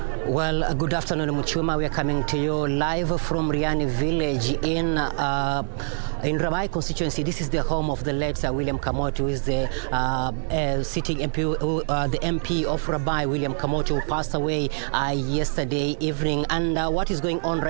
Well, good afternoon, Muchuma. We are coming to you live from Riani village in Rabai constituency. This is the home of the late William Kamoti, who is the sitting MP, the MP of Rabai, William Kamoti, who passed away yesterday evening. And what is going on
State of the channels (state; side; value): silent; left; 62 dB below the other